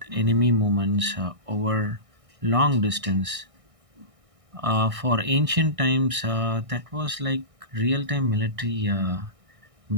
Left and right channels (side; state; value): left; late; 1.6 ms